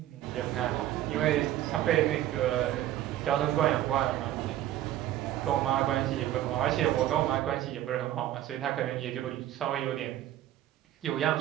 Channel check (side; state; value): left; quieter; 13.1 dB